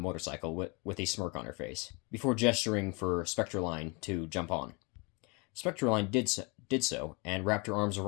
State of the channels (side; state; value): right; quieter; 30.4 dB